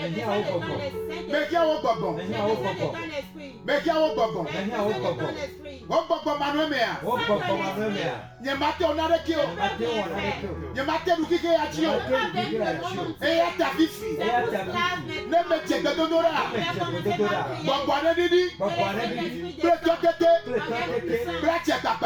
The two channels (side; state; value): both; identical; correlation 1.00